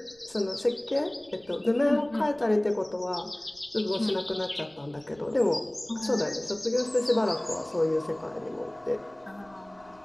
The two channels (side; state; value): right; noise; rumble, 28 dB below the sound